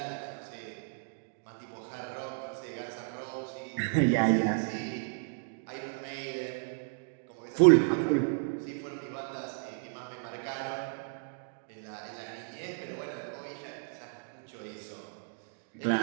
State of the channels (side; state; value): left; silent; digital silence